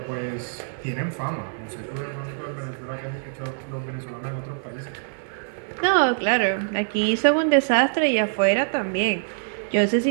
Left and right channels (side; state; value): left; silent; digital silence